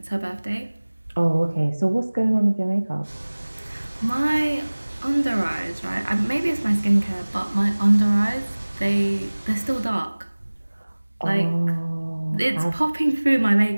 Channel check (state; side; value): inverted; both; correlation -1.00